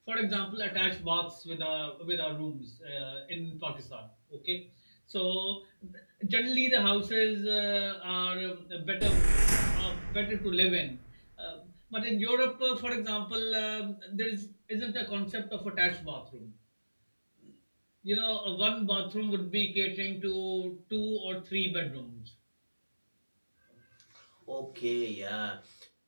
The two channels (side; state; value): both; inverted; correlation -1.00